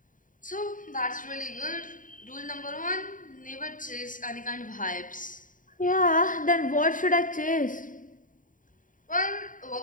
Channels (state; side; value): late; right; 0.39 ms